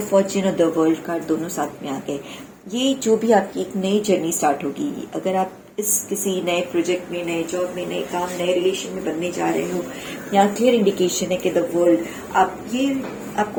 फॉर्च्यून और द वर्ल्ड कार्ड दोनों साथ में आ गए। ये जो भी आपकी एक नई जर्नी स्टार्ट होगी, अगर आप इस किसी नए प्रोजेक्ट में, नए जॉब में, नए काम, नए रिलेशन में बनने जा रहे हो, यहाँ क्लियर इंडिकेशन है कि द वर्ल्ड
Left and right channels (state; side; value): identical; both; correlation 1.00